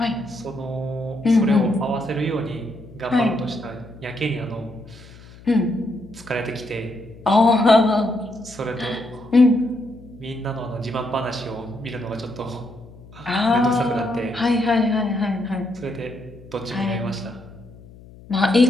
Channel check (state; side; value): noise; left; hum, 20 dB below the sound